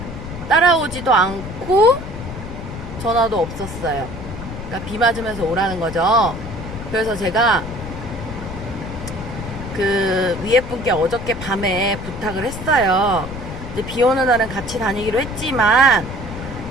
따라오지도 않고 전화도 없었어요. 그러니까 비 맞으면서 오라는 거죠. 그래서 제가 그 위에 분께 어저께 밤에 부탁을 했어요. 이제 비 오는 날은 같이 다니기로 했지만,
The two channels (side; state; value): left; noise; rumble, 9 dB below the sound